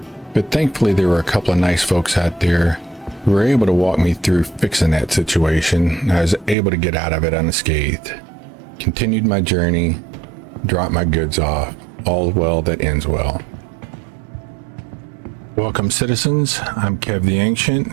But thankfully there were a couple of nice folks out there who were able to walk me through fixing that situation, and I was able to get out of it unscathed. Continued my journey, dropped my goods off, all well that ends well. Welcome citizens, I'm Kev the Ancient,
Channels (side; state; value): left; drops out; at 6.6 s